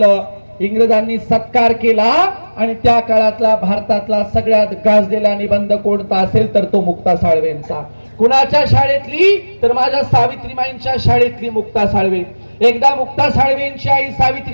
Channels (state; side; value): inverted; both; correlation -1.00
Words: इंग्रजांनी सत्कार केला. आणि त्या काळातला भारतातला सगळ्यात गाजलेला निबंध कोणता असेल तर तो मुक्ता साळवेंचा. कुणाच्या शाळेतली तर माझ्या सावित्रीबाईंच्या शाळेतली मुक्ता साळवे. एकदा मुक्ता साळवेंची आई